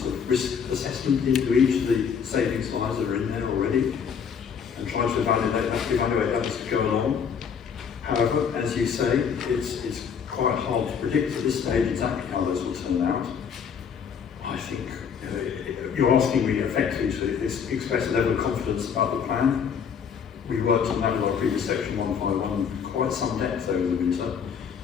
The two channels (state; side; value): quieter; right; 7.0 dB